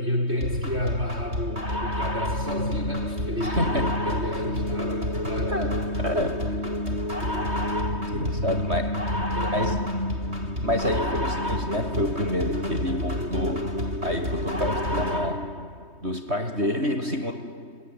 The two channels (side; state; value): left; late; 3.2 ms